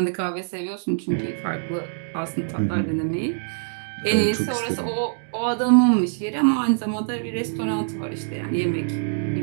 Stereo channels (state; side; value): silent; left; digital silence